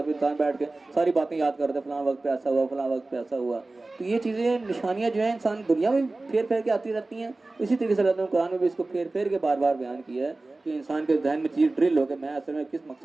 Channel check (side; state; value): left; quieter; 3.1 dB